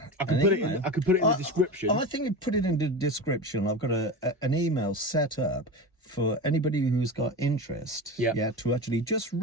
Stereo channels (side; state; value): both; normal; correlation 0.26